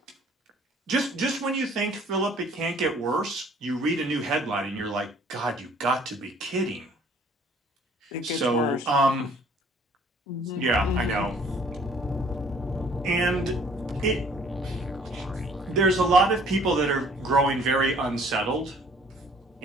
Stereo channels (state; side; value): normal; both; correlation 0.57